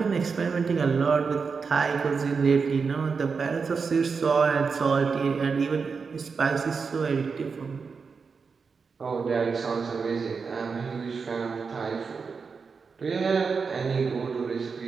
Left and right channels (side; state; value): left; quieter; 5.2 dB